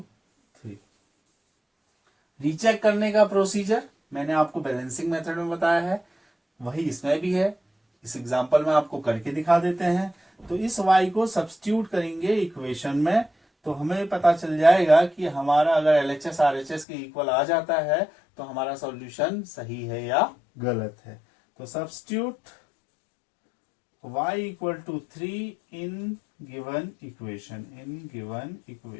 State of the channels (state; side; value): drops out; right; at 16.9 s